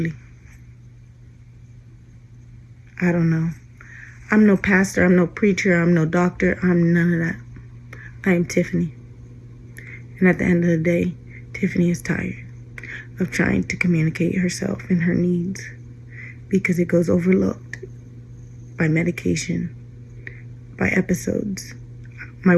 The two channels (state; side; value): identical; both; correlation 1.00